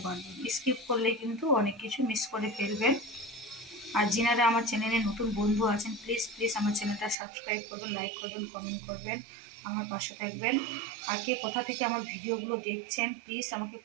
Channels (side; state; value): left; drops out; at 7.2 s